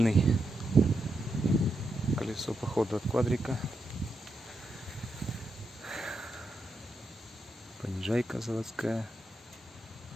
колесо походу от квадрика. Понижайка заводская.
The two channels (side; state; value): both; normal; correlation 0.84